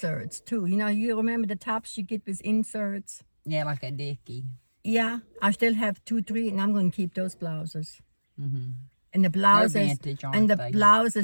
too. You know, you remember the tops you get with inserts? Yeah, like a dickie. Yeah, I still have 2, 3, and I'm going to keep those blouses. Mm-hmm. And the blouses, They're vintage, aren't they?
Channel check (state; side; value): inverted; both; correlation -1.00